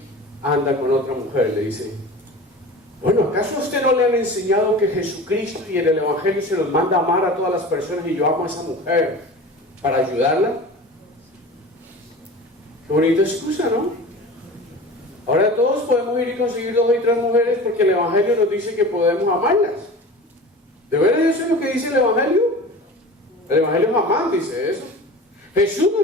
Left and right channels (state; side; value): normal; both; correlation 0.36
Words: anda con otra mujer, le dice, bueno, ¿acaso a usted no le han enseñado que Jesucristo y en el Evangelio se nos manda a amar a todas las personas y yo amo a esa mujer para ayudarla? Qué bonita excusa, ¿no? Ahora todos podemos ir y conseguir 2 y 3 mujeres porque el Evangelio nos dice que podemos amarlas. ¿De verdad eso es lo que dice el Evangelio? El Evangelio jamás dice eso. Jesús